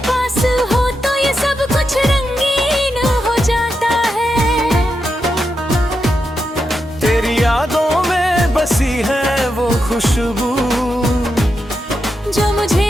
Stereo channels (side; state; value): both; normal; correlation 0.86